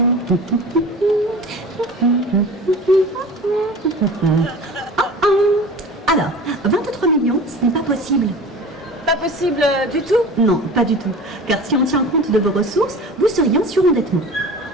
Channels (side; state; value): both; normal; correlation 0.38